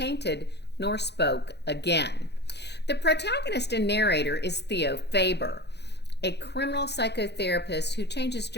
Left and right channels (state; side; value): late; right; 0.49 ms